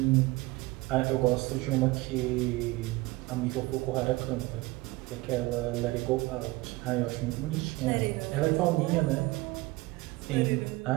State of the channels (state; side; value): quieter; left; 21.2 dB